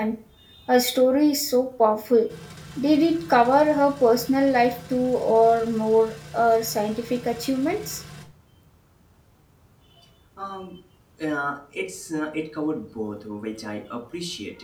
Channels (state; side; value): identical; both; correlation 1.00